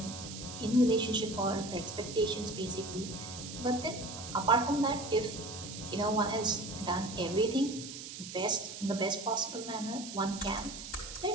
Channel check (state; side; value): noise; right; hiss, 10 dB below the sound